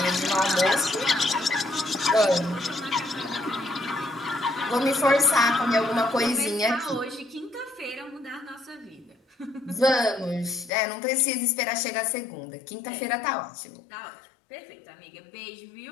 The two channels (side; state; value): right; drops out; at 10.7 s